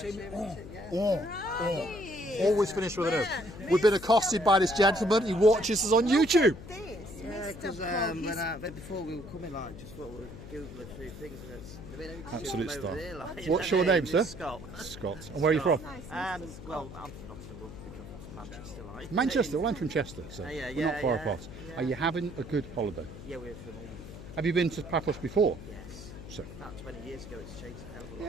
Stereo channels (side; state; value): left; noise; hum, 13 dB below the sound